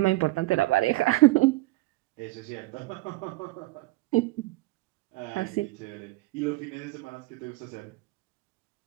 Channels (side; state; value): left; quieter; 19.8 dB